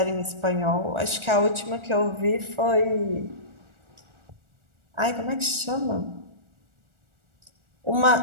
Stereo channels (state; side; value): late; left; 1.4 ms